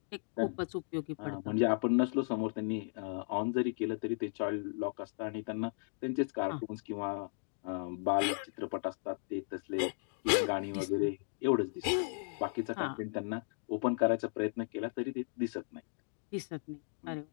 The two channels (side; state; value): right; silent; digital silence